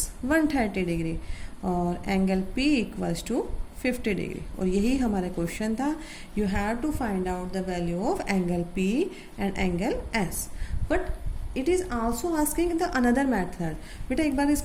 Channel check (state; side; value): identical; both; correlation 1.00